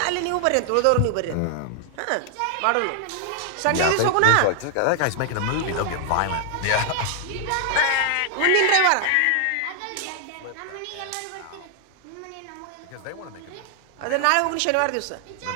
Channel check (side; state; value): both; different; correlation 0.00